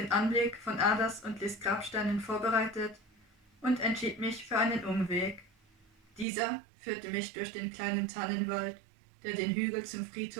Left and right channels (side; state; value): left; drops out; at 6.2 s